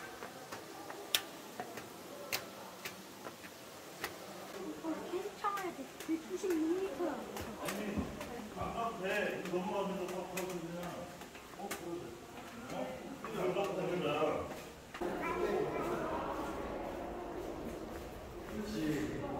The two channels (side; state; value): both; identical; correlation 1.00